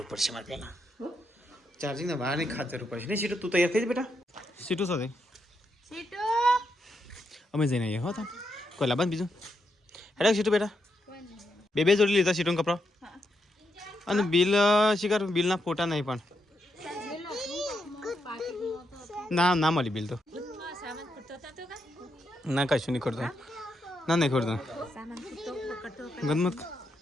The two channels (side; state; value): both; normal; correlation 0.81